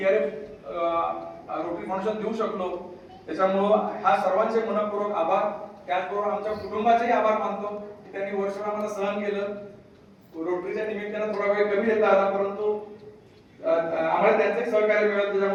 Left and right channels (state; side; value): identical; both; correlation 1.00